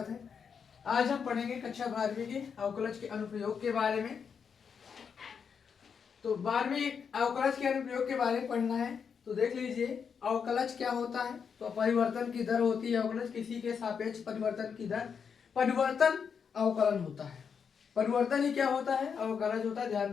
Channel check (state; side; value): quieter; right; 6.6 dB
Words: है। आज हम पढ़ेंगे कक्षा 12वीं के अवकलज के अनुप्रयोग के बारे में। तो 12वीं अवकलज के अनुप्रयोग के बारे में पढ़ना है तो देख लीजिए अवकलज क्या होता है। तो परिवर्तन की दर होती है अवकलज, किसी के सापेक्ष परिवर्तन की दर परिवर्तन अवकलन होता है। परिवर्तन ही क्या होता है? अवकलज होता है। ध्यान